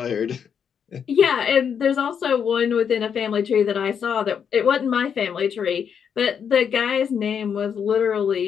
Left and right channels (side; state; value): right; quieter; 7.5 dB